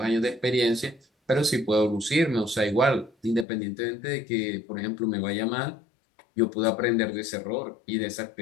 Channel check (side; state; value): right; drops out; at 3.5 s